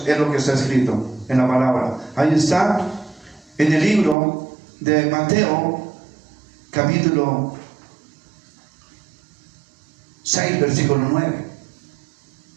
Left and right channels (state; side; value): drops out; left; at 4.2 s